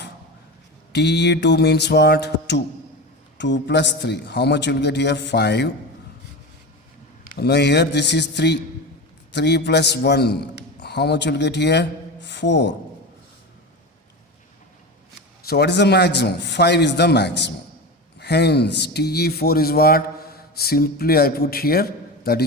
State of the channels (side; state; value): both; normal; correlation 0.25